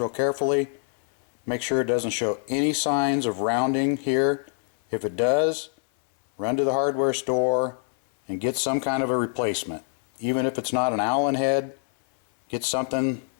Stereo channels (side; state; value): right; silent; 62 dB below the other